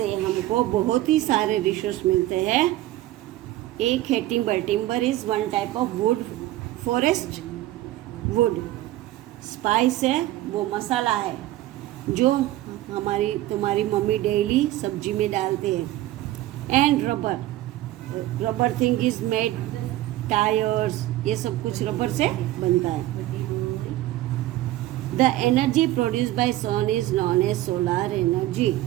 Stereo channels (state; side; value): quieter; left; 15.6 dB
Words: हमको बहुत ही सारे रिसोर्स मिलते हैं. एक है timber. Timber is one type of would, forest would. Spice है, वो मसाला है जो तुम्हारी मम्मी डेली सब्जी में डालते हैं. And rubber. Rubber thing is made, tyres, ये सब कुछ रबर से बनता है. The energy produce by sun is known as solar energy.